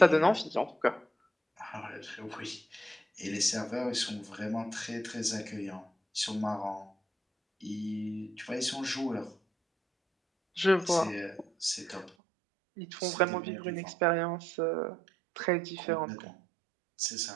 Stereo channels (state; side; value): drops out; left; at 12.1 s